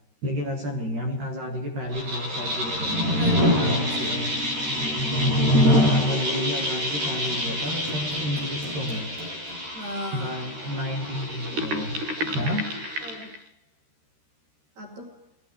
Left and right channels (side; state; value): left; late; 13 ms